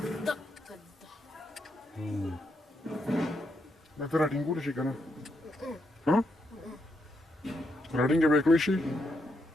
دا ته راټینګولی شي که نه راټینګه به یې کړی شي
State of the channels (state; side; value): normal; both; correlation 0.80